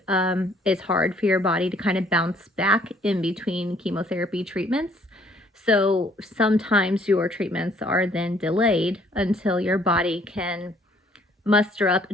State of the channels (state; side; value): normal; both; correlation 0.62